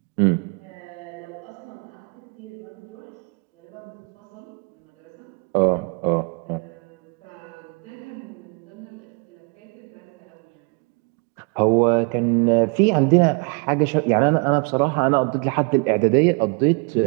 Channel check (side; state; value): left; quieter; 34.2 dB